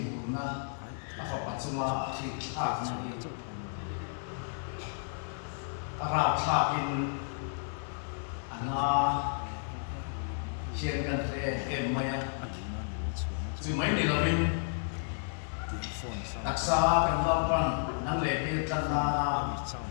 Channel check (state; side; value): silent; right; 56 dB below the other